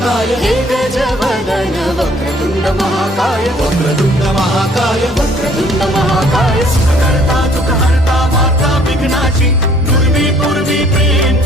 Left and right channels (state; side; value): normal; both; correlation 0.59